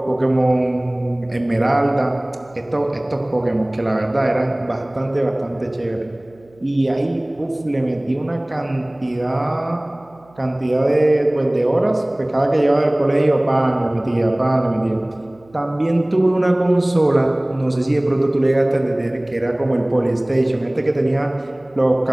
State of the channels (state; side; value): noise; right; hum, 29 dB below the sound